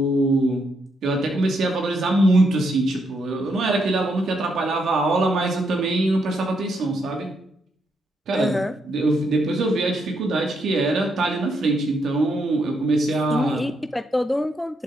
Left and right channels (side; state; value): both; normal; correlation 0.78